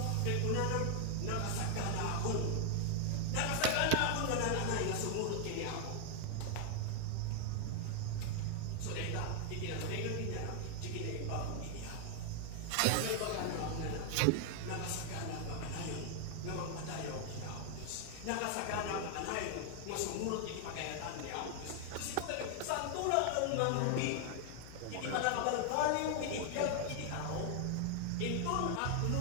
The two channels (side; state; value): both; different; correlation 0.00